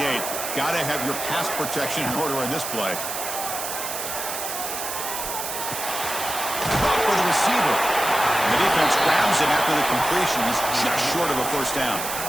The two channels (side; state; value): right; noise; hiss, 5 dB below the sound